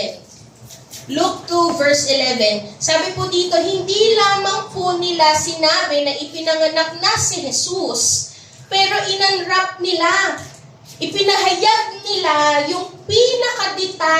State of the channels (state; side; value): identical; both; correlation 1.00